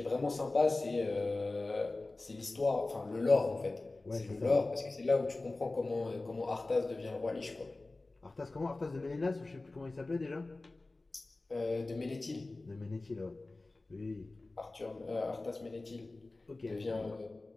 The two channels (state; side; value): quieter; right; 3.1 dB